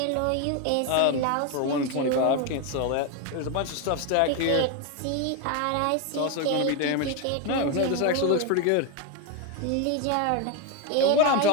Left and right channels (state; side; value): different; both; correlation 0.02